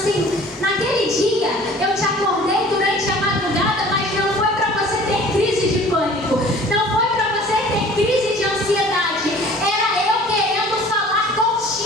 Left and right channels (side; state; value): both; normal; correlation 0.48